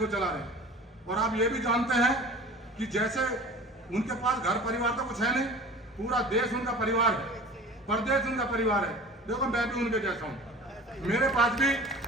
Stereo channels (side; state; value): both; normal; correlation 0.41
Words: चला रहे हैं। और आप ये भी जानते हैं कि जैसे उनके पास घर परिवार तो कुछ है नहीं, पूरा देश उनका परिवार है, प्रदेश उनका परिवार है। देखो मैं भी उनके जैसा हूँ, मेरे पास भी